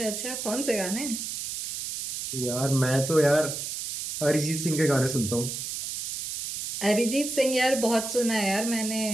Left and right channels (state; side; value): noise; right; hiss, 5 dB below the sound